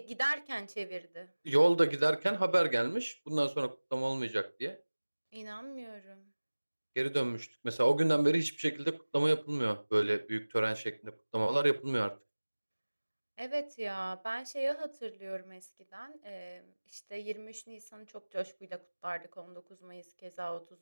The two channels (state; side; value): inverted; both; correlation -1.00